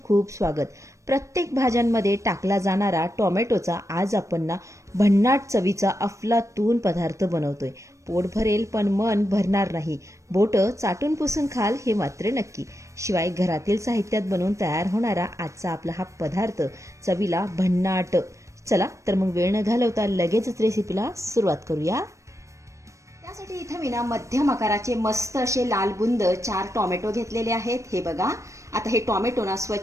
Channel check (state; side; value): late; left; 0.15 ms